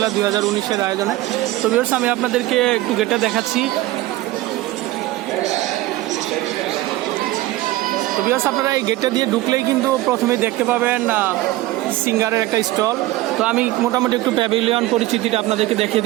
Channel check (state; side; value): quieter; left; 17.5 dB